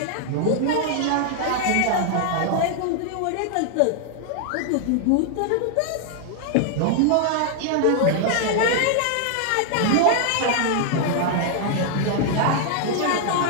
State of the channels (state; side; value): different; both; correlation 0.00